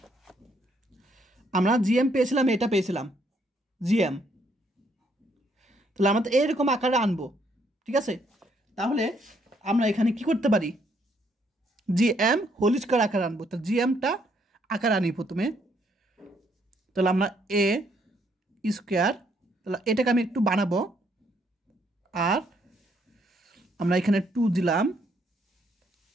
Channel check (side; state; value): both; normal; correlation 0.70